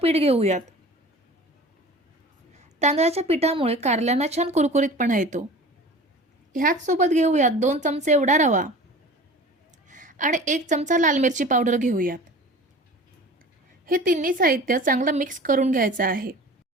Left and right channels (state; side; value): normal; both; correlation 0.40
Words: घेऊयात. तांदळाच्या पिठामुळे कारल्यांना छान कुरकुरीतपणा येतो. ह्याच सोबत घेऊयात 2 चमचे एवढा रवा आणि 1 चमचा लाल मिरची पावडर घेऊयात. हे तिन्ही साहित्य चांगलं मिक्स करून घ्यायचं आहे.